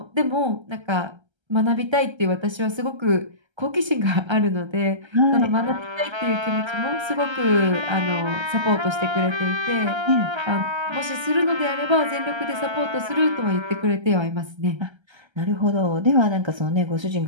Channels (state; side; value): late; left; 1.3 ms